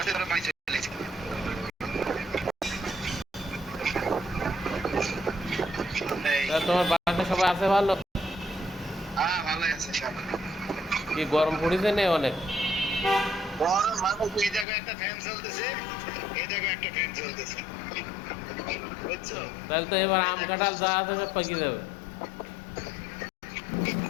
বাড়ি চলে এসেছি। তোমার বাসাতে সবাই আছে ভালো? হ্যাঁ ভালোই আছে সবাই। কি গরম পড়েছে না অনেক? গরম মানুষ, এই জায়গায় একটা ফ্যান চলতেছে, এই জায়গায় একটা ফ্যান চলতেছে, বুঝছো? তাহলে তো এবার আম কাঁঠাল যা আছে সব পাকিয়ে যাবে।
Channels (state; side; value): drops out; right; at 14.7 s